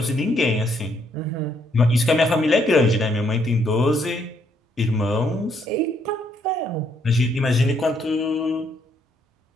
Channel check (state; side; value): normal; both; correlation 0.71